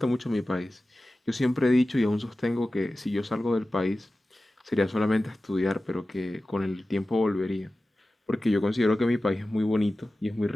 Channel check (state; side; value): normal; both; correlation 0.95